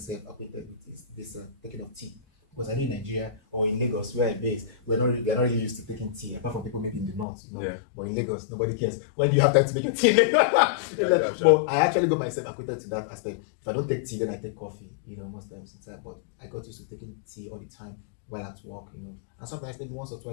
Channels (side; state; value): right; drops out; at 7.2 s